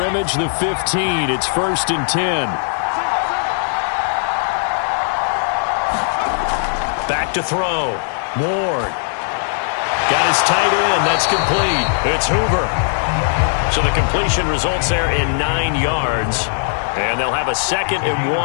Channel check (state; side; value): silent; right; digital silence